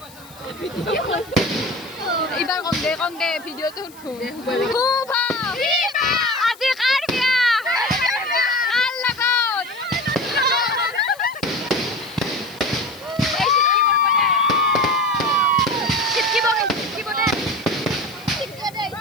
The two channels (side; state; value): left; noise; hiss, 23 dB below the sound